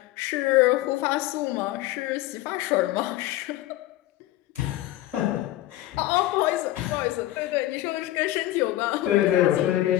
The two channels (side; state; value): right; quieter; 15.3 dB